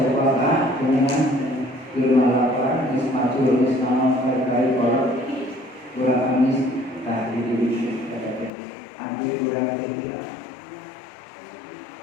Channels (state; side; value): drops out; right; at 8.5 s